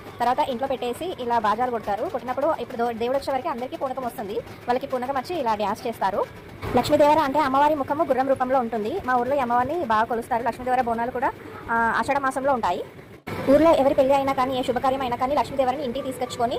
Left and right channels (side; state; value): both; identical; correlation 1.00